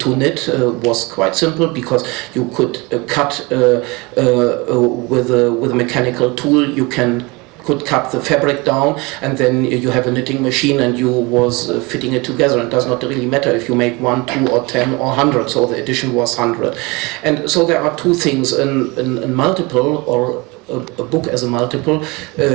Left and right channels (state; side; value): quieter; left; 25.7 dB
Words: knit was quite simple, because you could cut with a mechanical tool, you could cut the fabric down, and then you have a knitting machine and you was fitting it together. It does not really matter if you make 1, 2 or 10 or 100, so the edition was 100. And so there are two things, in multiple, or a book as a multiple.